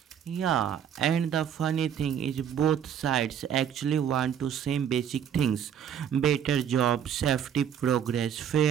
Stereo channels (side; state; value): left; quieter; 8.8 dB